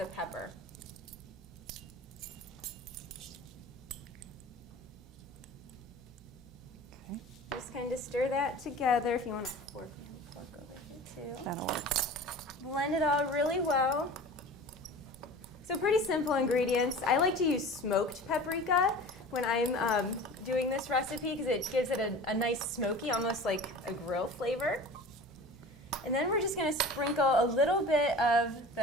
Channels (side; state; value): both; normal; correlation 0.38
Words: pepper. Okay. Just kind of stir that together. If you want a fork, you have a fork over here too. That'll work. Blend it all really well. So pretty simple ingredients. I like to use smoked paprika when I'm doing this recipe because it gives it a nice smoky, almost like a grill flavor. And then we're just going to sprinkle a little bit of